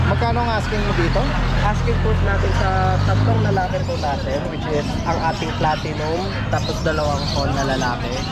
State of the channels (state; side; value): identical; both; correlation 1.00